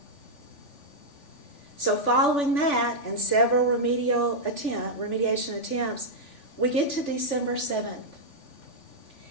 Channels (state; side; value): late; right; 3.4 ms